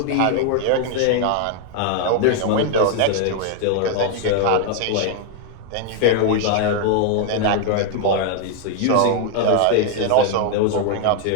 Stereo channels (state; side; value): different; both; correlation 0.00